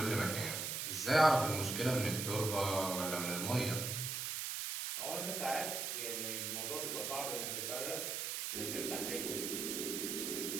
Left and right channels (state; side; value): noise; right; hiss, 2 dB below the sound